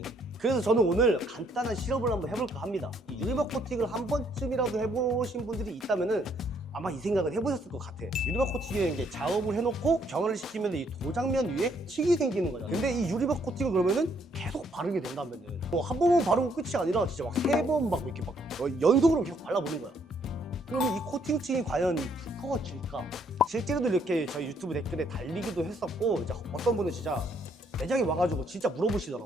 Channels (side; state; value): both; normal; correlation 0.69